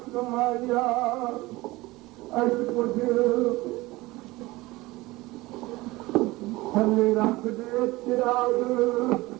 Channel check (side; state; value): left; quieter; 20.3 dB